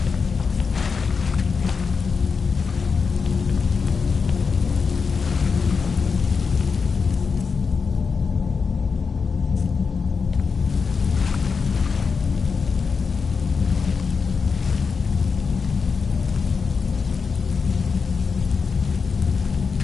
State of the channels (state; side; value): quieter; right; 5.3 dB